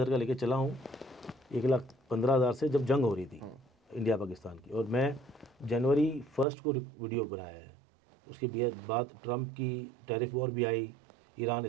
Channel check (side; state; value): left; drops out; at 6.5 s